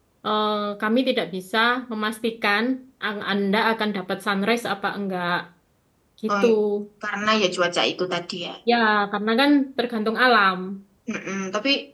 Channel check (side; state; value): both; identical; correlation 1.00